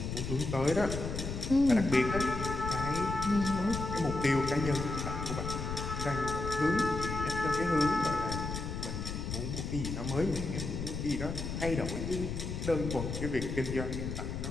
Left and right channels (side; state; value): left; noise; rumble, 4 dB below the sound